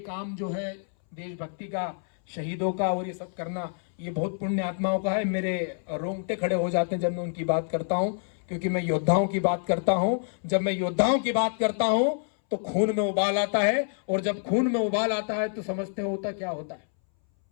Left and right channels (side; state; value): right; silent; 60 dB below the other